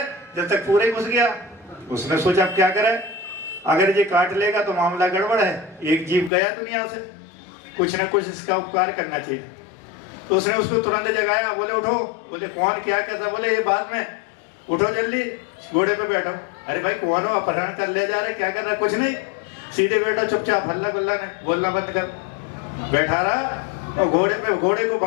जब तक पूरे घुस गया। उसने सोचा अब क्या करे, अगर ये काट लेगा तो मामला गड़बड़ है, एक जीव गया दुनिया से, कुछ न कुछ इसका उपकार करना चाहिए। तो उसने उसको तुरंत जगाया, बोले उठो। बोले कौन, क्या कहता, बोले ये बाद में, उठो जल्दी, घोड़े पे बैठो। अरे भाई कौन हो, अपहरण कर ले जा रहे, क्या कर रहा, कुछ नहीं, सीधे बैठो चुपचाप, हल्ला गुल्ला नहीं, बोलना बंद कर। बैठा रहा और घोड़े को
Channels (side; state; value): right; drops out; at 6.3 s